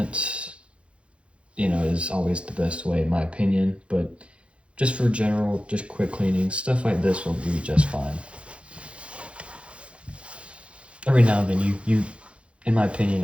you know, is always the best way in my opinion. But just for general, just quick cleaning, stuff like this will be just fine. Every now and then you in my opinion,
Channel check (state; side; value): late; left; 0.060 ms